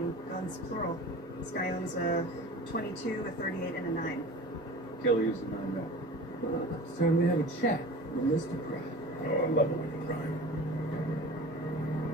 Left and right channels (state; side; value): normal; both; correlation 0.38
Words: Guns plural. This guy owns a 22, a 38, and a 9. Killer used a 9 mil. It's time to have a chat with Mr. Pratt. Oh, I love it with the crime.